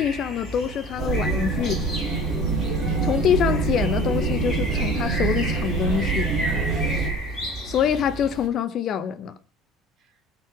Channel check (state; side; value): normal; both; correlation 0.43